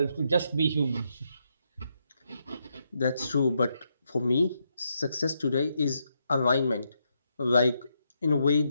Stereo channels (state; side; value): inverted; both; correlation -0.80